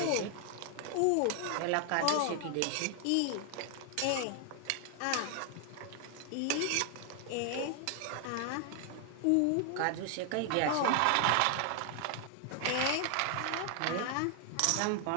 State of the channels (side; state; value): both; different; correlation 0.00